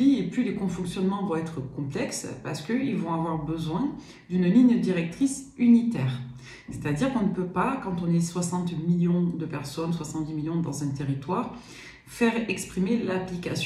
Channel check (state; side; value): identical; both; correlation 1.00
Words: et plus les cofonctionnements vont être complexes, parce qu'ils vont avoir besoin d'une ligne directrice unitaire. C'est-à-dire qu'on ne peut pas, quand on est 60 millions de personnes, 70 millions dans un territoire, faire exprimer